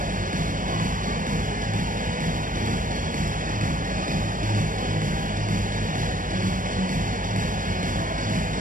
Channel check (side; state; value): left; late; 0.39 ms